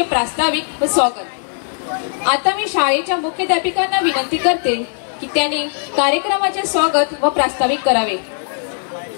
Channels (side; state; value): right; silent; digital silence